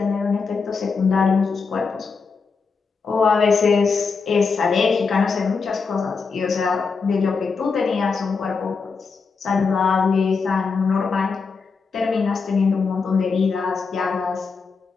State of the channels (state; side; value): quieter; right; 4.9 dB